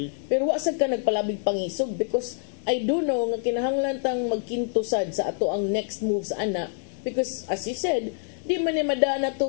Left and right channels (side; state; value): right; silent; digital silence